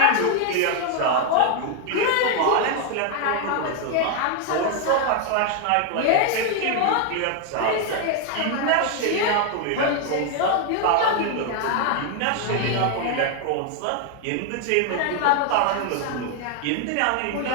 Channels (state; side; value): different; both; correlation 0.00